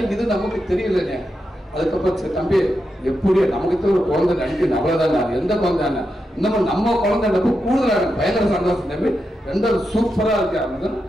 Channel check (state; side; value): normal; both; correlation 0.87